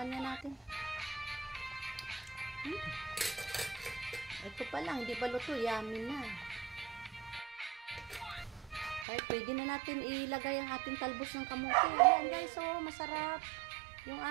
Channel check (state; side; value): drops out; left; at 9.1 s